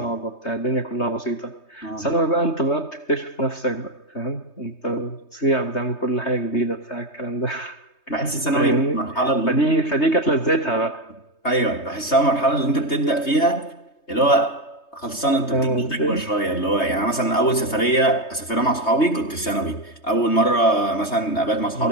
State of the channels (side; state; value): right; late; 3.2 ms